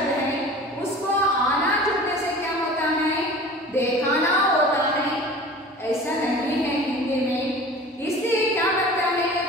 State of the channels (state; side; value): normal; both; correlation 0.41